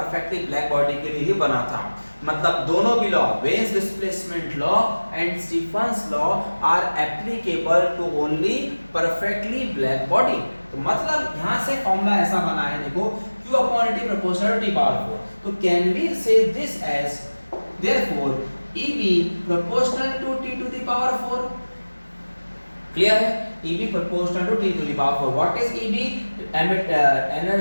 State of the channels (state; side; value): inverted; both; correlation -1.00